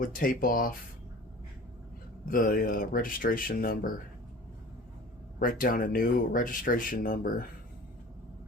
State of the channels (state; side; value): normal; both; correlation 0.42